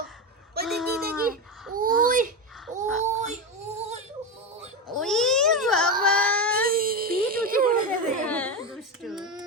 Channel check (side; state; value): both; normal; correlation 0.16